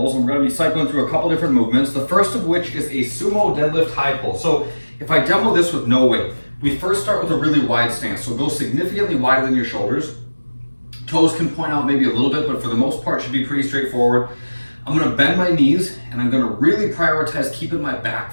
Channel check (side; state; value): both; inverted; correlation -1.00